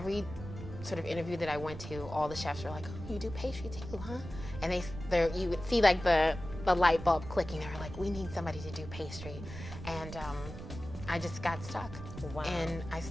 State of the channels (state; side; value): noise; right; rumble, 11 dB below the sound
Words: sort of interview that I went to, all the chefs were like, oh, you do pastry too, huh? And you would see like the light bulb clicking. They were like, we need somebody to do pastry. And I just got stuck. Wow. And I